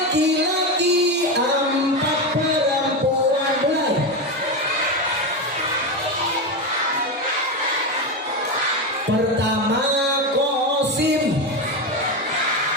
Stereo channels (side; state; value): both; normal; correlation 0.15